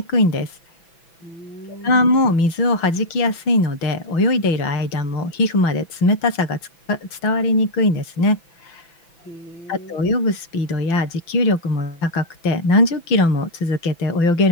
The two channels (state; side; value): late; right; 6.0 ms